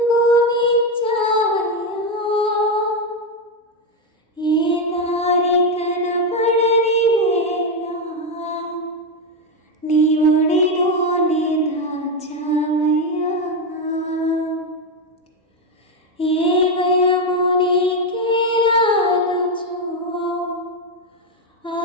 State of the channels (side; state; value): both; normal; correlation 0.07